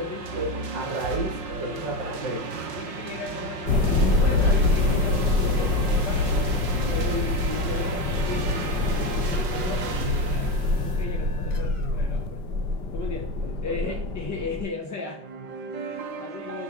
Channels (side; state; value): left; late; 5.1 ms